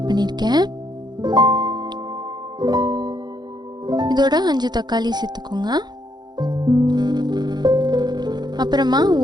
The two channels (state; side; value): late; left; 0.21 ms